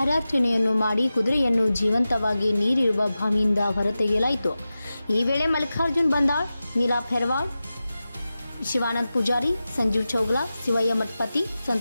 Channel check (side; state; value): both; inverted; correlation -0.94